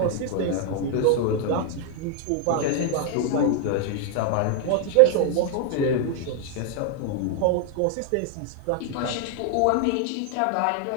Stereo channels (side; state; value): both; different; correlation 0.00